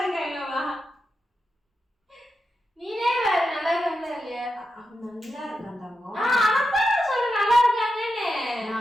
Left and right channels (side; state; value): both; normal; correlation 0.88